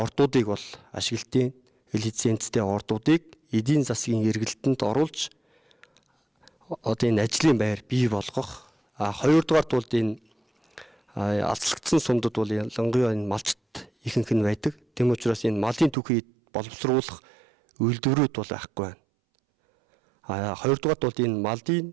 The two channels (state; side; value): drops out; left; at 16.0 s